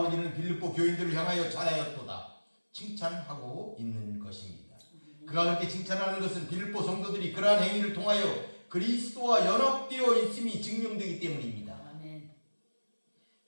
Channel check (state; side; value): inverted; both; correlation -1.00